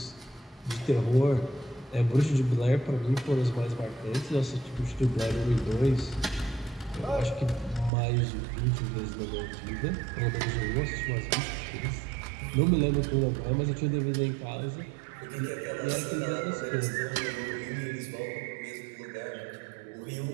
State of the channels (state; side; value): drops out; left; at 7.9 s